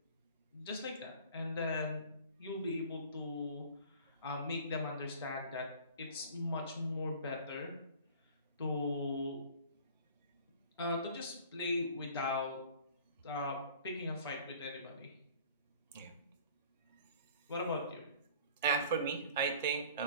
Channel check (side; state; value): both; inverted; correlation -0.46